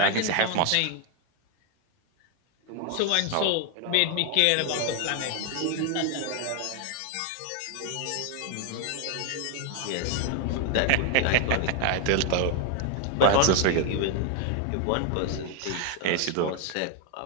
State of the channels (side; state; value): both; different; correlation 0.01